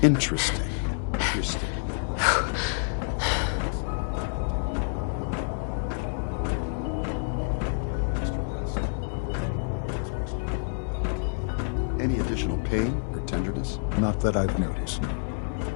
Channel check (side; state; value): right; silent; digital silence